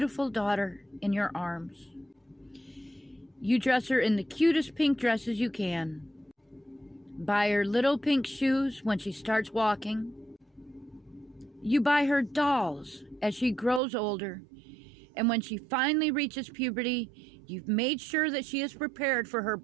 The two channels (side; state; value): left; drops out; at 13.8 s